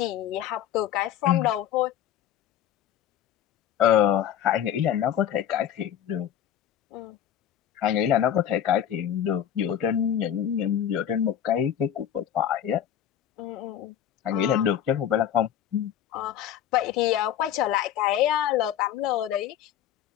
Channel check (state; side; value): quieter; right; 10.2 dB